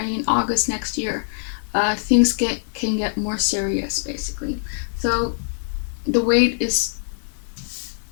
and August next year, things can get more serious, basically. So the wait is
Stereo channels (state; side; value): silent; right; 63 dB below the other